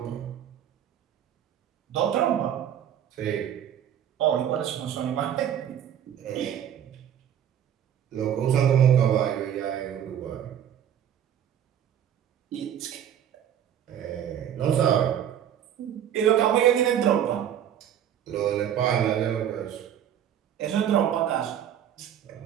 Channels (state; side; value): quieter; left; 9.8 dB